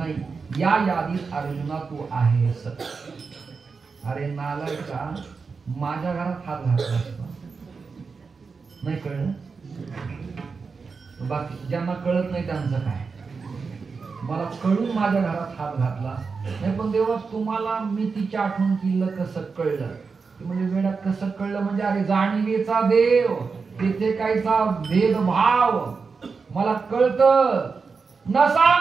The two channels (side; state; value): left; quieter; 4.9 dB